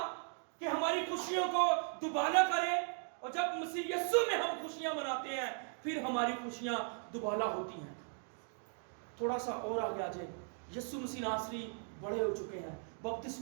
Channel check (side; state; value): left; silent; 52 dB below the other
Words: کہ ہماری خوشیوں کو دوبالا کرے. اور جب مسیح یسوع میں ہم خوشیاں مناتے ہیں پھر ہماری خوشیاں دوبالا ہوتی ہیں. تھوڑا سا اور آگے آ جائیں, यीशु मसीह नासरी बड़े हो चुके हैं,